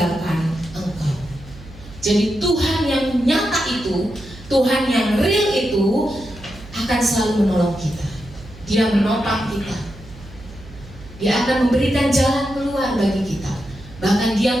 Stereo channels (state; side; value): noise; right; hum, 18 dB below the sound